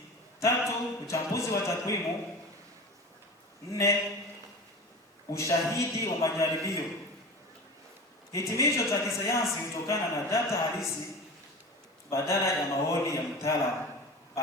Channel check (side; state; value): both; normal; correlation 0.33